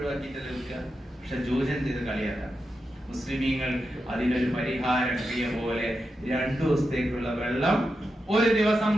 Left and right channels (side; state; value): both; normal; correlation 0.88